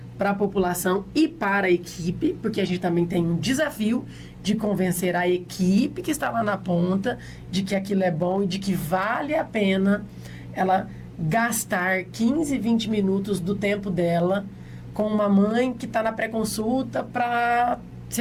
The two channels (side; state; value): both; identical; correlation 1.00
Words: para a população e para a equipe, porque a gente também tem um desafio de convencer a equipe que está lá na ponta de que aquilo é bom e de que vale a pena ela gastar 15, 20 minutos do tempo dela com uma mãe que está na pré-consulta para